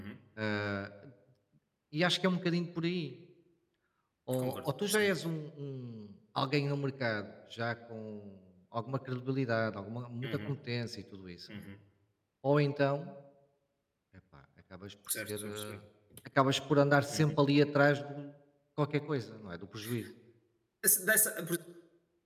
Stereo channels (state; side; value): identical; both; correlation 1.00